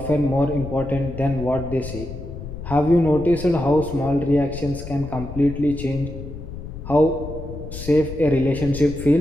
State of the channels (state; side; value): noise; left; rumble, 10 dB below the sound